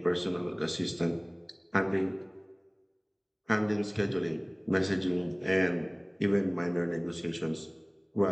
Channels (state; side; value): identical; both; correlation 1.00